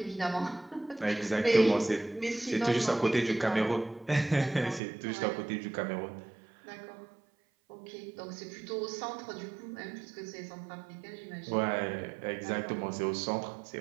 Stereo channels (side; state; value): left; drops out; at 4.8 s